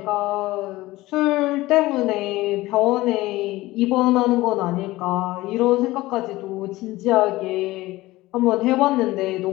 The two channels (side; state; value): right; quieter; 18.4 dB